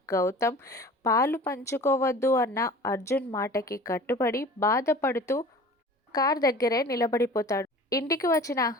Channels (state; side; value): normal; both; correlation 0.42